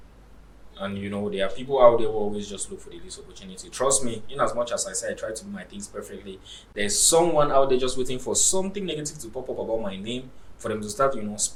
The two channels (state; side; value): identical; both; correlation 1.00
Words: And there are people out there who always just look for the least opportunity. Trust me, in as much as I say I try to do my things perfectly, there's someone out there just waiting for something negative to pop up about my name for them to start,